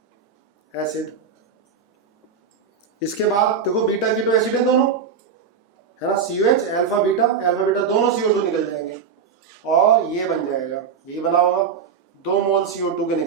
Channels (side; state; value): left; quieter; 6.4 dB